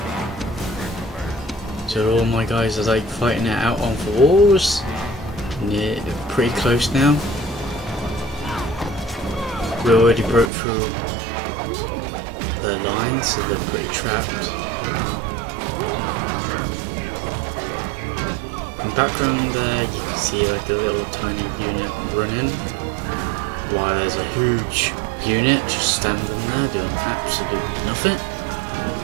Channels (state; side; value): drops out; left; at 10.5 s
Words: So all my guys are like fighting it out on the walls. Yeah, pretty close now. We already broke through their lines, so they're pretty trapped. In the background there, you can see like a little tiny unit running, while there's a huge unit just standing there doing absolutely nothing.